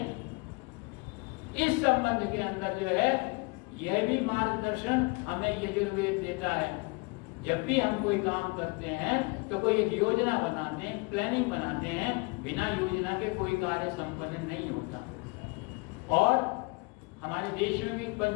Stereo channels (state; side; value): quieter; right; 29.0 dB